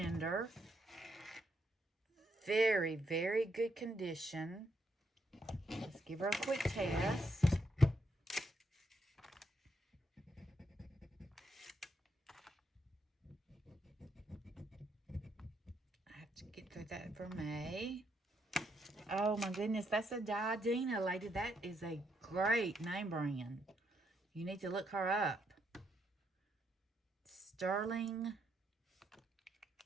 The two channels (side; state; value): both; normal; correlation 0.77